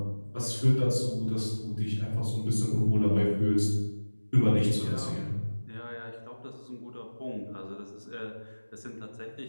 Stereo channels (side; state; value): both; inverted; correlation -1.00